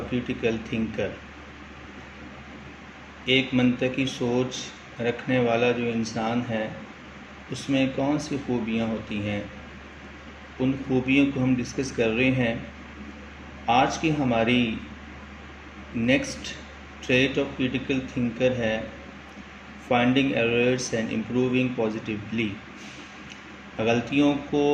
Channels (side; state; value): both; identical; correlation 1.00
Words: critical thinker. ایک منطقی سوچ رکھنے والا جو انسان ہے اس میں کون سی خوبیاں ہوتی ہیں، ان خوبیوں کو ہم ڈسکس کر رہے ہیں۔ آج کی ہماری next trait of critical thinker ہے finding errors and improving positively, غلطیوں کو